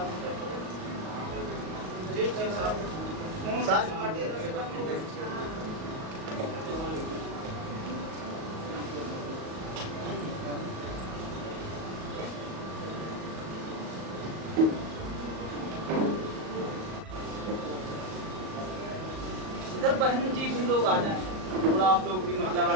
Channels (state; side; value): late; left; 38 ms